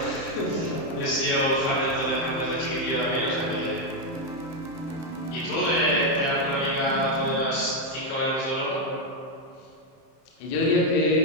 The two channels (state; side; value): late; right; 30 ms